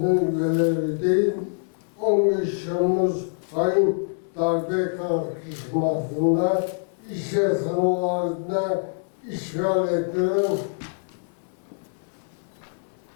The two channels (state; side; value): silent; right; 62 dB below the other